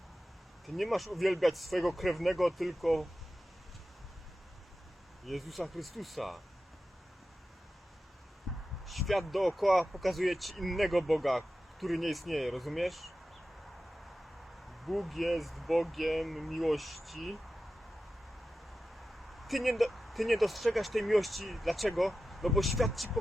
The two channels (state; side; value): normal; both; correlation 0.93